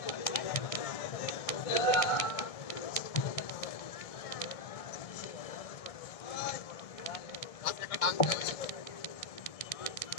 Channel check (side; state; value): right; late; 1.6 ms